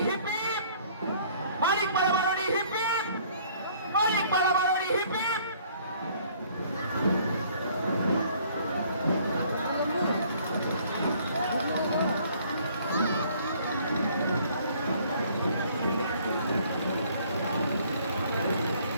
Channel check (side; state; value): both; inverted; correlation -0.59